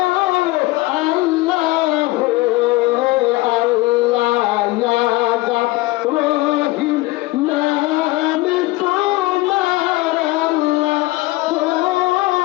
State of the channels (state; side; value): quieter; right; 20.0 dB